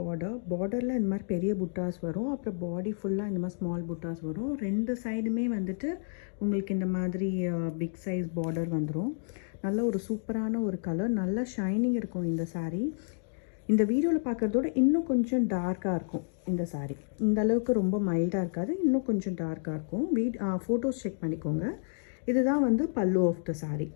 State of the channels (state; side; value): silent; right; digital silence